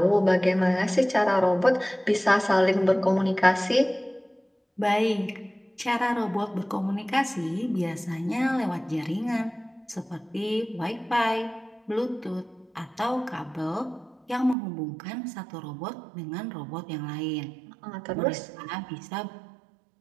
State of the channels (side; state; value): left; drops out; at 14.6 s